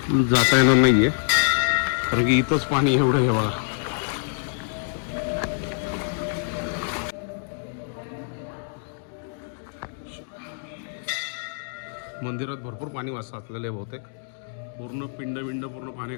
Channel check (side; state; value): right; silent; digital silence